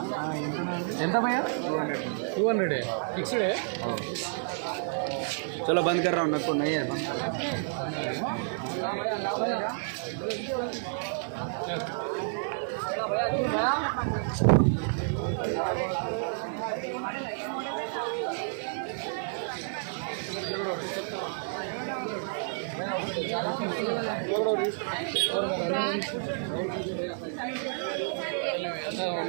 ఎంత భయ్యా 200 ఫిక్స్డ్ है चलो बंद कर रहा हूँ, मेरे को नहीं है बंद कर అలా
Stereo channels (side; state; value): left; silent; digital silence